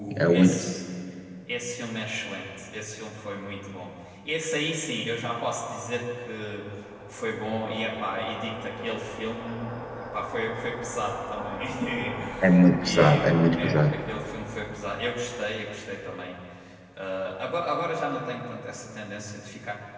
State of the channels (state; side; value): identical; both; correlation 1.00